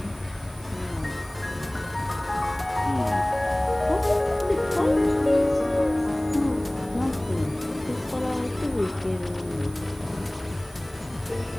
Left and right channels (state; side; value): noise; right; hiss, 23 dB below the sound